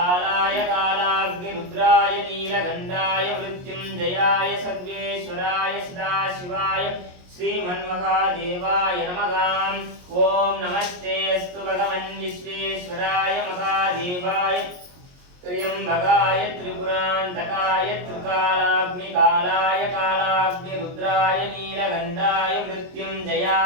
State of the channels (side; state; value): left; late; 22 ms